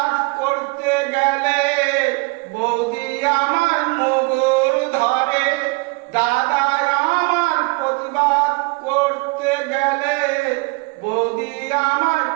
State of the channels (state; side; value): quieter; left; 28.7 dB